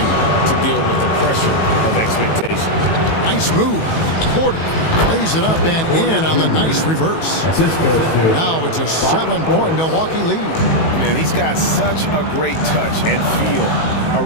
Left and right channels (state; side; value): late; right; 18 ms